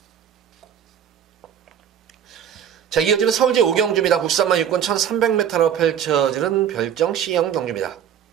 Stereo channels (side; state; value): left; quieter; 9.0 dB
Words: 자, 이어지는 서울제 5경주입니다. 국산만 육군 1300m로 펼쳐지는 별정 C형 경주입니다.